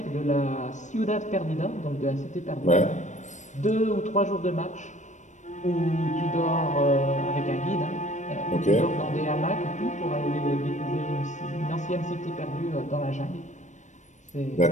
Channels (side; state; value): right; late; 0.35 ms